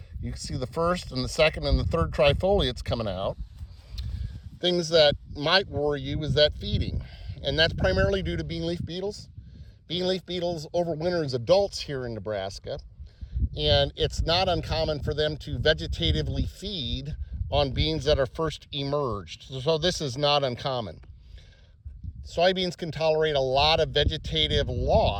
You can see the first and the second and the third trifoliates coming out. Things that might worry you is that feeding, and that's primarily due to bean leaf beetles. Bean leaf beetles overwinter as adults here in Nebraska, and it's not uncommon for them to vegetatively feed on beans that are first emerged. So this is not uncommon. Soybeans can tolerate a lot of vegetative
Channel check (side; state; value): both; identical; correlation 1.00